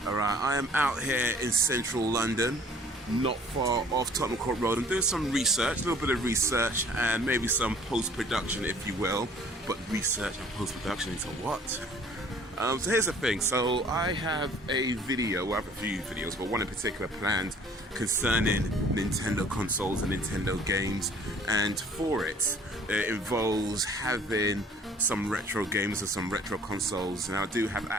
Alright, I am out here in central London, not far off Tottenham Court Road. I'm doing some research, a little bit of research, and maybe some post-production, if you will. But research and post-production into what? So here's the thing, so I have a video, well I have a few videos, but one in particular planned concerning Nintendo consoles and Nintendo games, and for it, it involves having some retro games and some retro consoles. Now I do have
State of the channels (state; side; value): normal; both; correlation 0.53